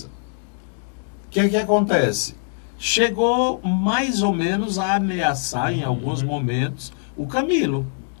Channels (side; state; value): right; silent; digital silence